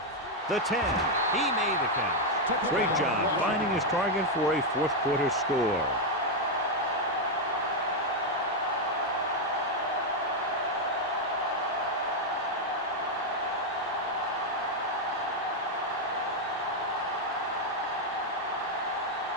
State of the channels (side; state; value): both; normal; correlation 0.02